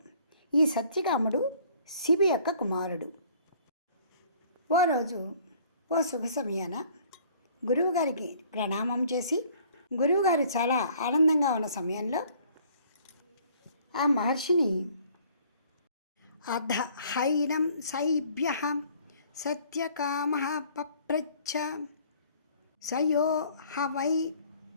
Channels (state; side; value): inverted; both; correlation -0.56